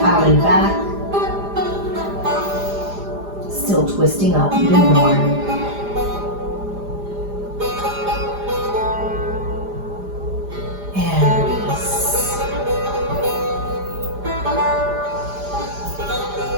out and back. Still twisting up even more. And release.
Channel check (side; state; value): left; late; 4.9 ms